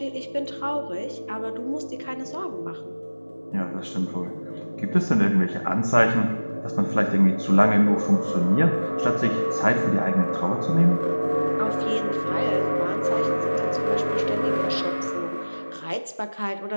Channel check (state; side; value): inverted; both; correlation -1.00